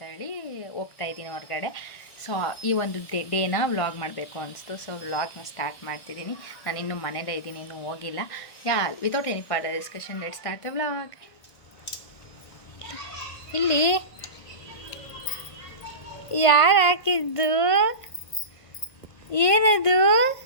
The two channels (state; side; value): late; right; 1.5 ms